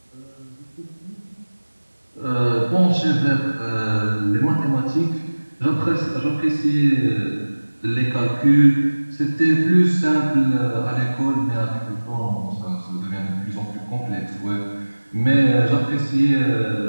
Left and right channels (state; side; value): inverted; both; correlation -1.00